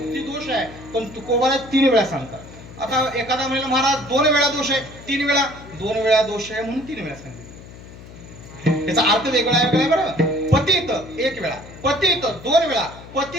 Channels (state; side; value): noise; left; hum, 17 dB below the sound